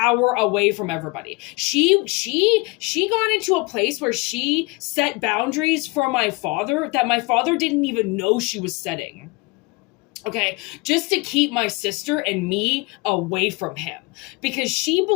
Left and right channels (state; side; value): quieter; right; 25.5 dB